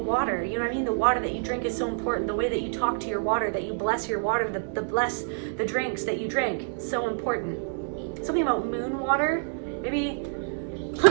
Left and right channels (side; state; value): left; silent; 60 dB below the other